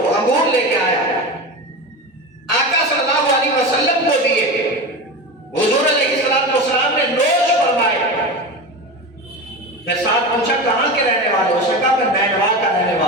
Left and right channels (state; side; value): normal; both; correlation 0.25